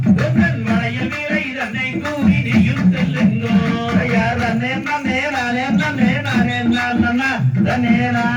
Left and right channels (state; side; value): identical; both; correlation 1.00